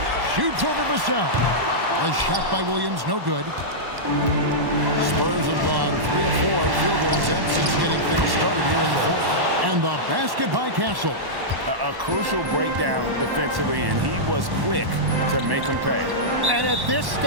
Shoots over Vassell. The shot by Williams, no good. Spurs have gone 3 of 4 field goal attempts since getting things started here in the fourth. And the basket by Castle. A crucial breakdown defensively, and he was quick to make them pay. And at this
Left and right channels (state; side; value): late; left; 1.1 ms